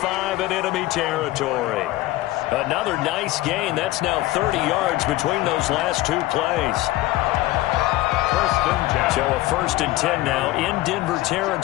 in enemy territory. Another nice gain. That's now 30 yards between those last two plays. First and 10. So a 1st and 10 now in Denver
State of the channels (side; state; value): right; quieter; 17.3 dB